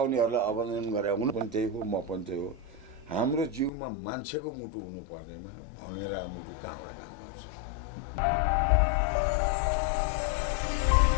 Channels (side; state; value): right; drops out; at 3.7 s